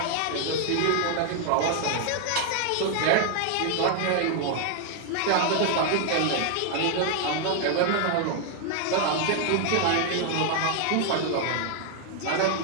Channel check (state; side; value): different; both; correlation 0.00